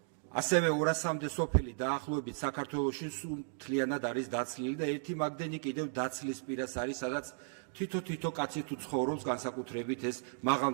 ასევე 200-მდე სოფელი დაახლოებით საქართველოში მთლიანად არის დაცლილი და ერთი მაგდენი კიდევ დაცლის პირას არის, სადაც თითო კაცი თუ ცხოვრობს, განსაკუთრებით ეს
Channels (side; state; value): left; silent; digital silence